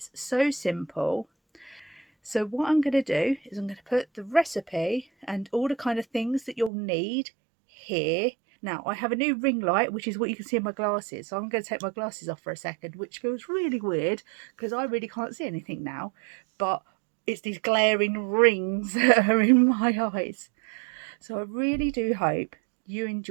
so simple. So what I'm going to do is I'm going to put the recipe and all the kind of things that you'll need here. Now I have a new ring light, which is what you can see in my glasses. So I'm going to take my glasses off for a second, which feels really weird because I really can't see anything now. But it's these glaring rings that are in my eyes. So I really do hope you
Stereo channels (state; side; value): drops out; left; at 6.7 s